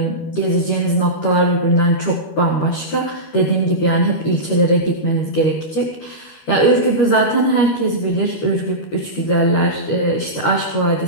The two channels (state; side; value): late; right; 13 ms